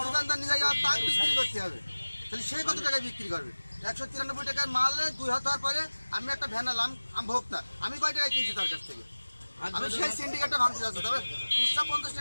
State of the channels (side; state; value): both; inverted; correlation -1.00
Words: দোকানদার নিয়ে যাওয়া তার বিক্রি করতে হবে তাহলে সে কত টাকায় বিক্রি করবে 193 টাকার মালে 2 হাত হওয়ার পরে আমি একটা ভ্যান আলাম আমি ভোক্তা আমি কয় টাকায় কিনছি তার কাছ থেকে আমি সেই সিন্ডিকেটটা ভাঙতে যাচ্ছি তবে খুচরা 50